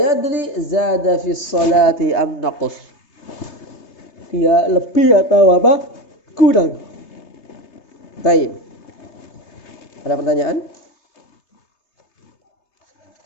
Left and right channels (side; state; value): right; late; 3.3 ms